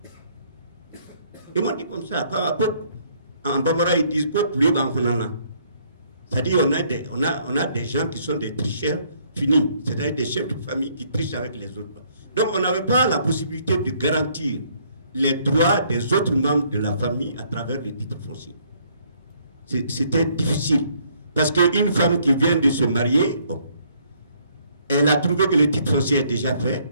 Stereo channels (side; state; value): both; inverted; correlation -0.66